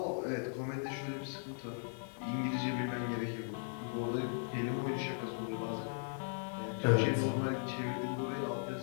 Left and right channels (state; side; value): silent; right; 53 dB below the other